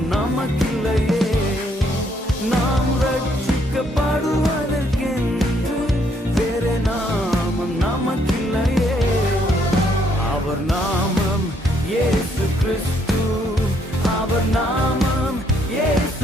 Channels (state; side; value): normal; both; correlation 0.70